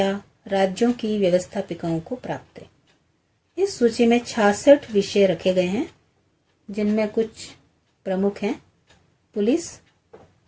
राज्यों की व्यवस्थापिकाओं को प्राप्त है। इस सूची में 66 विषय रखे गए हैं, जिनमें कुछ प्रमुख हैं: पुलिस,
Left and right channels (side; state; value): both; identical; correlation 1.00